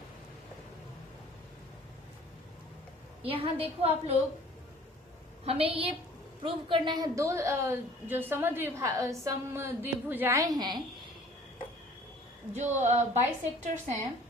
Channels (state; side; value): normal; both; correlation 0.51